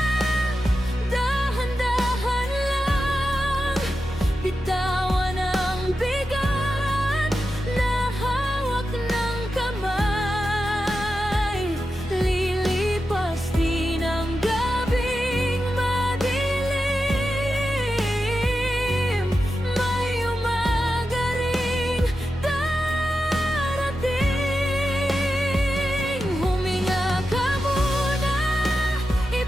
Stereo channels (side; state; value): both; normal; correlation 0.90